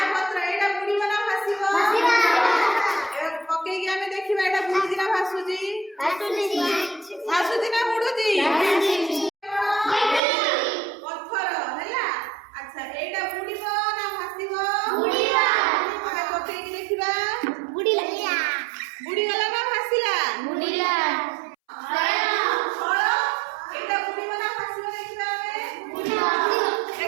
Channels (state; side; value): drops out; left; at 10.2 s